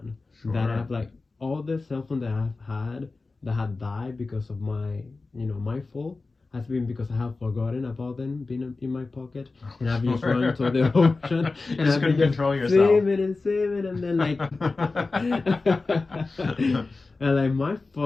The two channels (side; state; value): right; quieter; 3.7 dB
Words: that I've like all the cell phone that I've had that had died because of my, you know, my fault has been because I have forgotten about them being in my pocket, and I've just run to the ocean and Just I've couldn't been control yourself. swimming and then like and like my